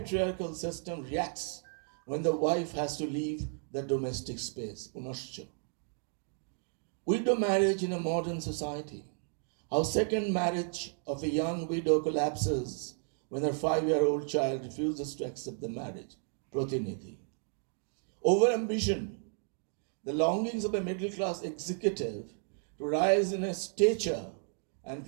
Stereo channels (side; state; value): left; silent; 55 dB below the other